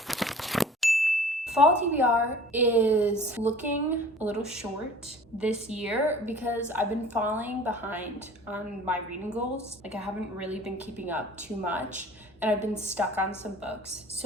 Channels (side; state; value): both; normal; correlation 0.46